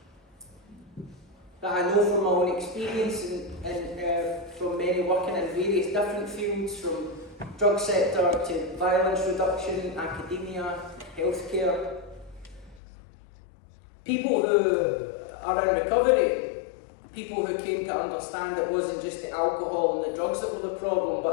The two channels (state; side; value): drops out; right; at 12.8 s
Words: that I know from my own experience and from many working in various different fields, from drug sector to violence reduction, academia, healthcare, people who are in recovery, people who came to understand it wasn't just the alcohol and the drugs that were the problem,